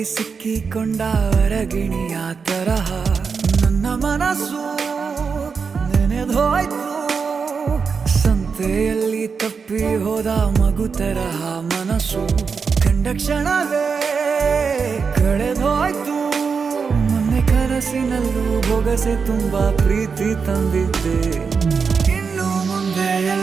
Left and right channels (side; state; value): left; quieter; 5.5 dB